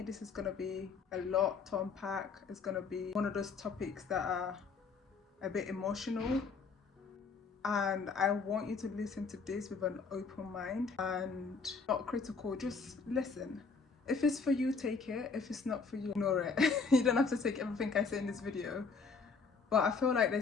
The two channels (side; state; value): right; quieter; 4.9 dB